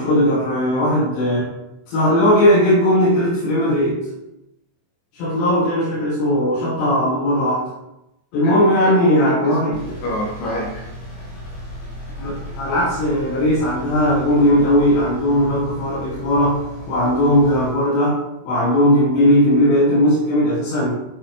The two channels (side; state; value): right; late; 23 ms